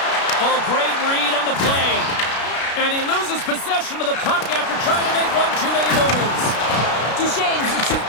Oh, great read on the play. And he loses possession of the puck after trying to make one too many moves. Duchesne's the shoot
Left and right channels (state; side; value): late; right; 33 ms